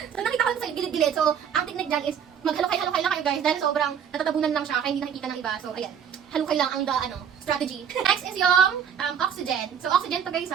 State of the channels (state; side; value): quieter; left; 8.0 dB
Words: So, nakita ko sa gilid-gilid. So, ang technique dyan is maghalukay-halukay lang kayo guys. Dahil sobrang natatabunan lang siya kaya hindi nakikita ng iba. So, ayan. Halukay lang ang strategy. Next is yung oxygen. So, oxygen to guys